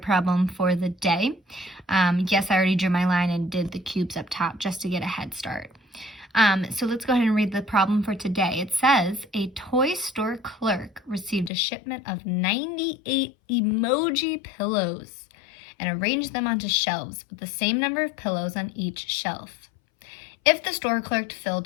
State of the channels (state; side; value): drops out; right; at 11.5 s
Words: for the day. Yes, I already drew my line and did the cubes up top just to get a head start. So let's go ahead and read the problem for today. It says, a toy store clerk received a shipment of 98 emoji pillows and arranged them onto shelves with the same number of pillows on each shelf. If the store clerk